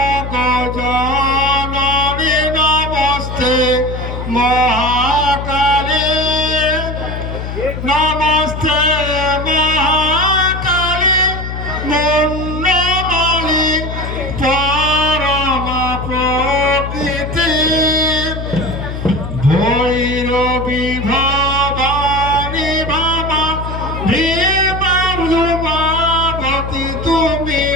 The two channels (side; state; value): left; noise; hum, 6 dB below the sound